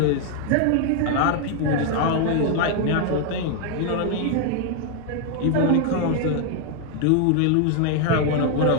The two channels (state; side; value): different; both; correlation 0.00